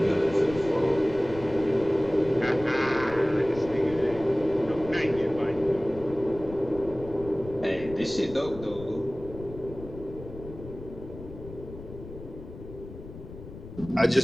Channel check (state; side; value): noise; left; rumble, 14 dB below the sound